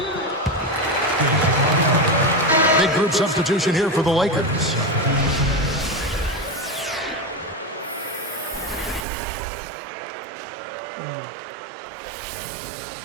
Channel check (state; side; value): drops out; left; at 9.1 s